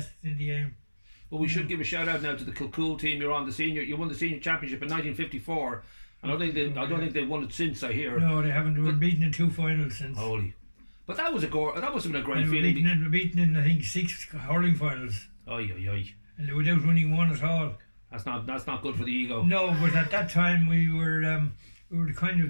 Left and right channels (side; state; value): both; inverted; correlation -1.00